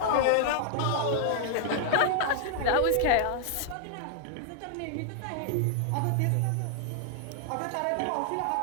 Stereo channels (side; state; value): both; different; correlation 0.00